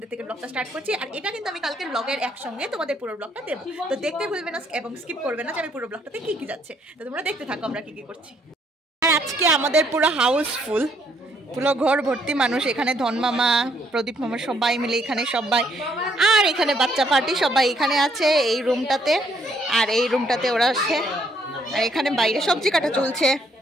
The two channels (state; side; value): normal; both; correlation 0.69